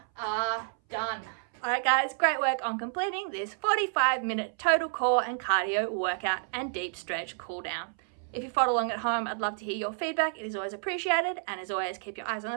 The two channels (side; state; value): left; silent; 58 dB below the other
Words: are done. Alright guys, great work on completing this 45-minute total core and cardio workout and deep stretch cool down. If you followed along at home, I'd love to hear your feedback. It is always appreciated. And as always, keep your eyes on